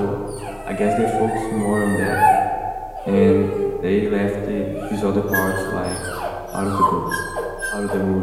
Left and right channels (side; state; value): both; identical; correlation 1.00